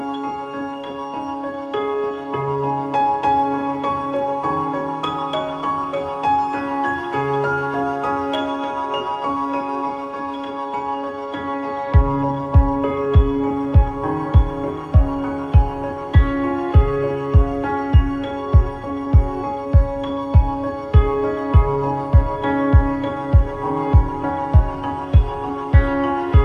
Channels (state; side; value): identical; both; correlation 1.00